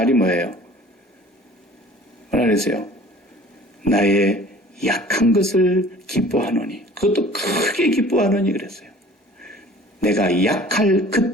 뭐예요? 뭐라 그랬어요? 나의 약한 것을 기뻐하노니. 그것도 크게 기뻐하노니 그랬어요. 내가 약할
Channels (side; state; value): both; normal; correlation 0.48